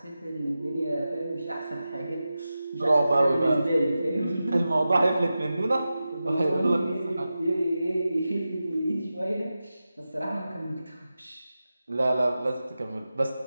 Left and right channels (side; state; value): both; inverted; correlation -0.93